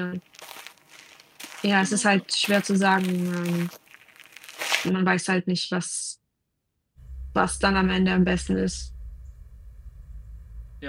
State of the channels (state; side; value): identical; both; correlation 1.00